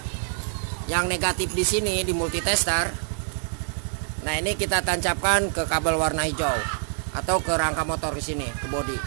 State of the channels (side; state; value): left; silent; digital silence